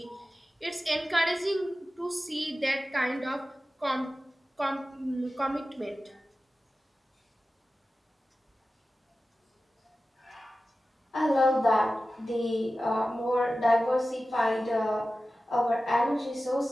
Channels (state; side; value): normal; both; correlation 0.95